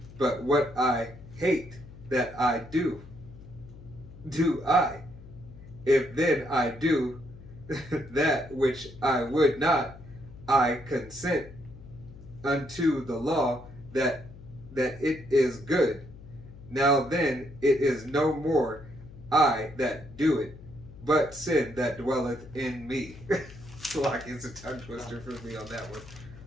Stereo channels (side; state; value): left; noise; hum, 17 dB below the sound